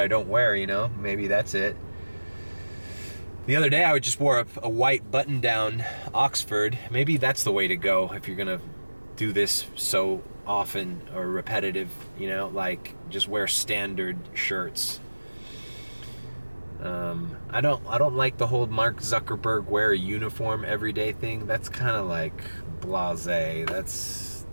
don't wear, you know? Maybe that's it. The other day I just wore a white button-down Oxford. Maybe that's the way to go if you're gonna do this so often or repetitive, you know? Like, just wear standard shirts. I don't like the whole Mark Zuckerberg wear a uniform everyday thing. That's kind of like blasé.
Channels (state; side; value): inverted; both; correlation -1.00